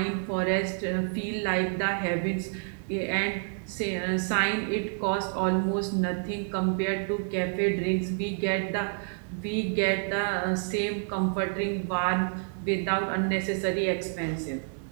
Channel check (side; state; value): left; silent; 55 dB below the other